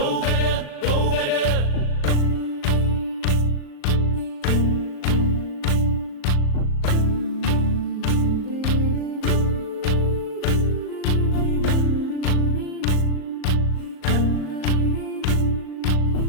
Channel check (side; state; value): right; late; 38 ms